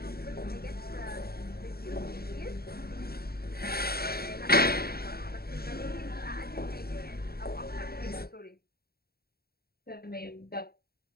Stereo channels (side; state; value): right; late; 0.45 ms